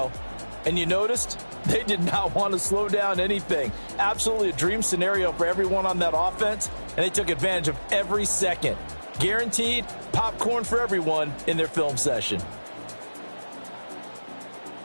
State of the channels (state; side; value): inverted; both; correlation -1.00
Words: And you noticed they did not want to slow down anything. Absolutely a dream scenario for everyone on that offense, and they took advantage of every second. Guaranteed popcorn for everyone in their film session.